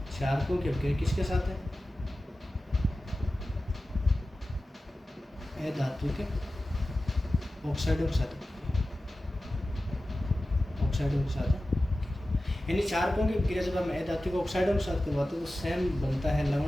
क्षारकों की अभिक्रिया किसके साथ है, अधात्विक ऑक्साइडों के साथ, ऑक्साइडों के साथ। यानी क्षारकों की अभिक्रिया जब हम अधात्विक ऑक्साइडों के साथ करवाते हैं तो सेम बनता है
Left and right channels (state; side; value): normal; both; correlation 0.95